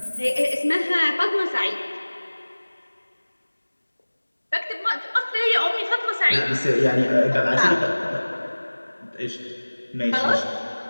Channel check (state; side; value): inverted; both; correlation -1.00